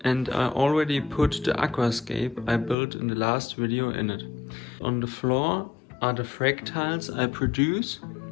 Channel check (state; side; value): drops out; right; at 2.8 s